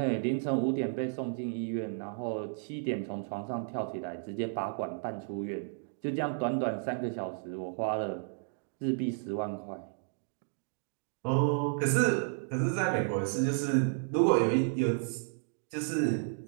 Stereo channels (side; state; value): left; silent; digital silence